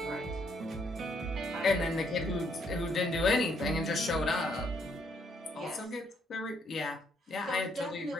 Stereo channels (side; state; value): both; normal; correlation 0.71